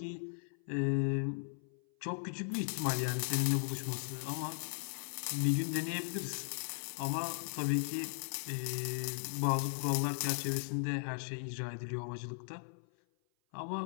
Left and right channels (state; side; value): silent; right; 53 dB below the other